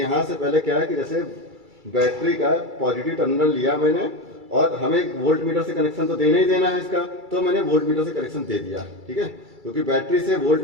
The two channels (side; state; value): left; late; 2.3 ms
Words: से पहले क्या है कि जैसे बैटरी का पॉजिटिव टर्मिनल लिया मैंने और हमें वोल्ट मीटर से कनेक्शन तो देना ही देना है इसका, तो मैंने वोल्ट मीटर से कनेक्शन दे दिया, ठीक है। क्योंकि बैटरी से वोल्ट